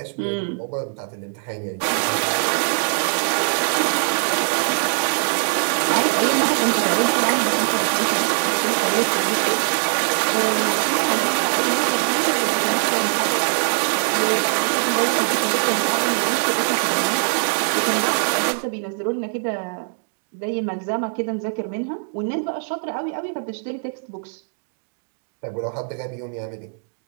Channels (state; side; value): silent; left; digital silence